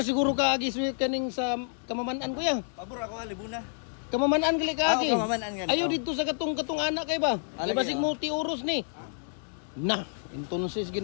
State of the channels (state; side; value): silent; right; digital silence